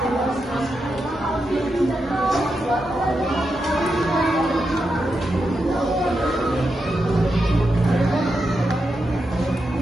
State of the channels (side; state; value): both; normal; correlation 0.86